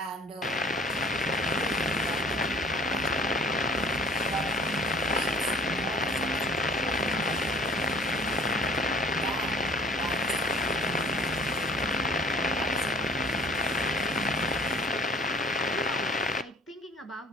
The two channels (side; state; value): both; normal; correlation 0.52